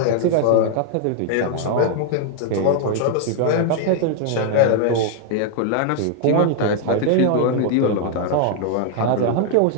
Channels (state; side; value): different; both; correlation 0.00